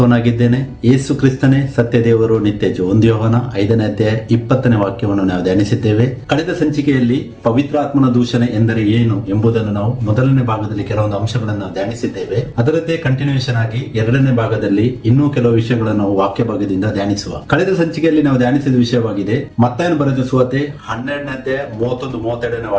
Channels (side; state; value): both; identical; correlation 1.00